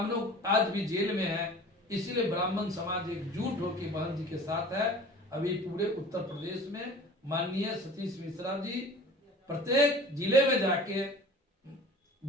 आज भी जेल में है। इसीलिए ब्राह्मण समाज एकजुट होकर बहन जी के साथ है। अभी पूरे उत्तर प्रदेश में माननीय सतीश मिश्रा जी प्रत्येक जिले में जाके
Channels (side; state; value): both; normal; correlation 0.43